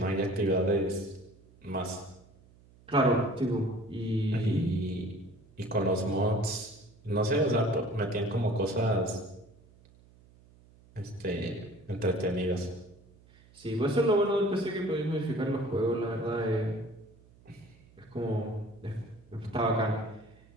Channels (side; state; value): right; noise; hum, 26 dB below the sound